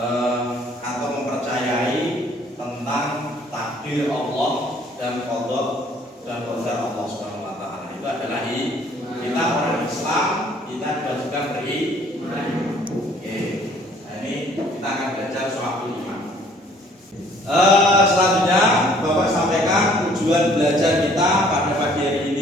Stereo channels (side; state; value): both; normal; correlation 0.59